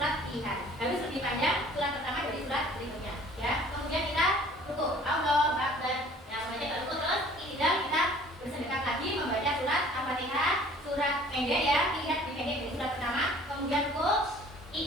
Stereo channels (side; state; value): both; normal; correlation 0.52